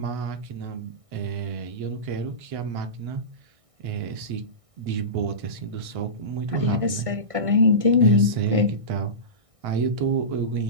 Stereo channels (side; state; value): left; late; 1.6 ms